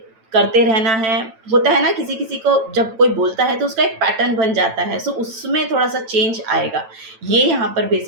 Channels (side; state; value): left; late; 9.0 ms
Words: करते रहना है। होता है ना, किसी किसी को जब कोई बोलता है तो उसका एक पैटर्न बन जाता है। सो उसमें थोड़ा सा चेंज आएगा। ये यहाँ पर